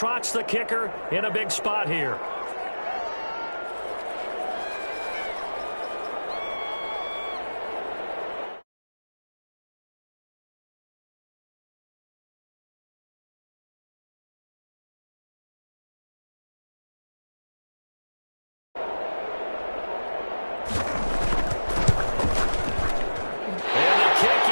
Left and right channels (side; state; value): both; inverted; correlation -1.00